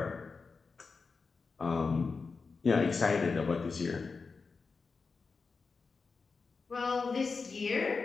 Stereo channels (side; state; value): right; quieter; 4.7 dB